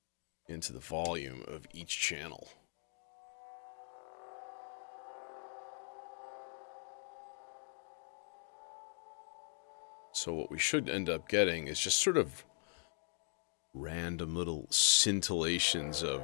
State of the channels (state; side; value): silent; right; digital silence